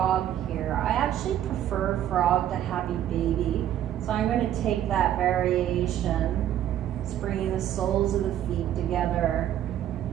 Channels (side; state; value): left; quieter; 11.4 dB